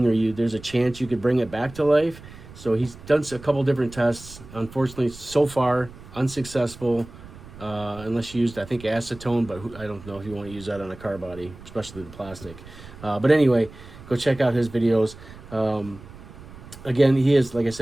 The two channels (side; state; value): right; noise; rumble, 17 dB below the sound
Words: or there's a chance you could bring it back to life. So he's done a couple different tests. Unfortunately, so far unsuccessful. unless you used, I think, acetone, but I don't know if you want to use that on a car body, especially the plastic. But anyway, go check out his videos. Again, he is, like I